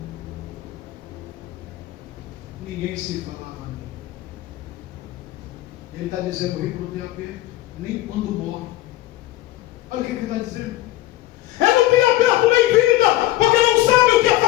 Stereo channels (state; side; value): quieter; right; 15.8 dB